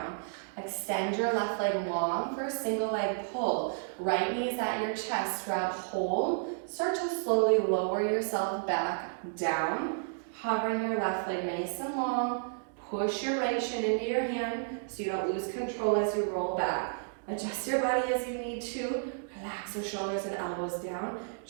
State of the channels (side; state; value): left; silent; digital silence